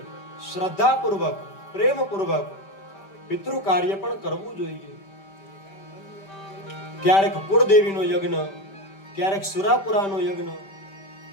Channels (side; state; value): right; late; 5.1 ms